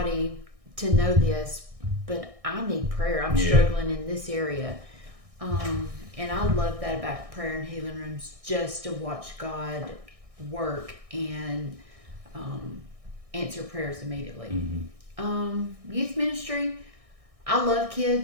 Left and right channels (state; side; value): late; left; 1.6 ms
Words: to know this, but I need prayer. I'm struggling in this area. And I love that about prayer and healing rooms, just to watch God work and answer prayers immediately. Youth ministry, I love